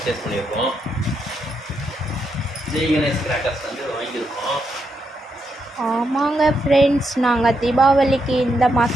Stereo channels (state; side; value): normal; both; correlation 0.81